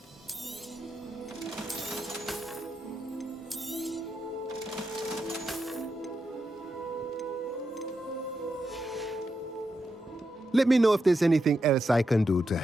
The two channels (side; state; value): both; normal; correlation 0.86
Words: Let me know if there's anything else I can do to